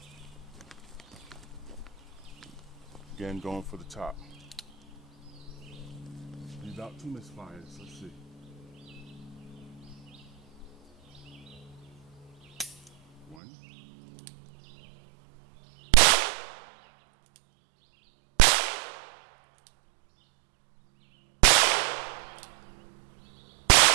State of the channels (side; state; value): left; drops out; at 13.4 s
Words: Again, going for the top. About 2 misfires, let's see. One.